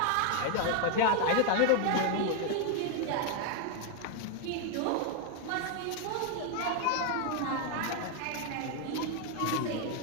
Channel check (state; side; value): different; both; correlation 0.00